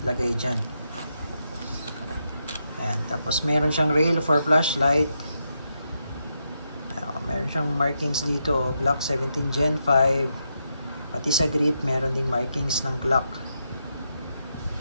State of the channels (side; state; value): both; inverted; correlation -0.83